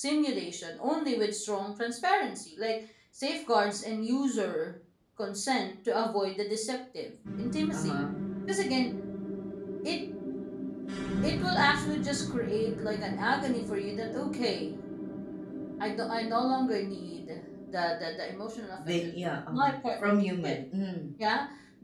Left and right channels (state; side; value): identical; both; correlation 1.00